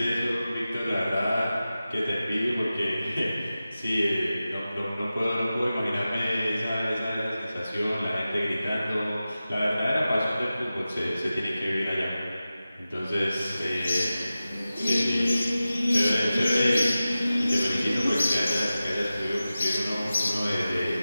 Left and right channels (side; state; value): both; inverted; correlation -0.95